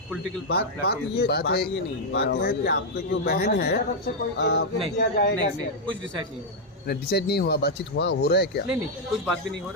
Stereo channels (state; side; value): normal; both; correlation -0.02